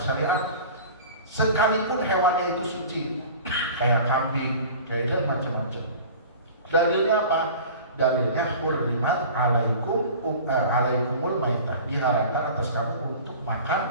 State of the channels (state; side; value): inverted; both; correlation -0.40